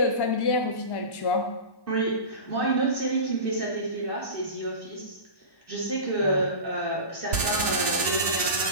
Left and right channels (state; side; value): late; right; 1.1 ms